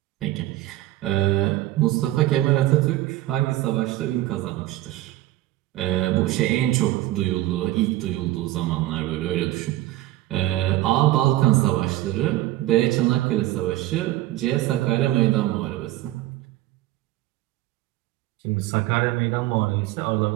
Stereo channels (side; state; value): left; quieter; 15.9 dB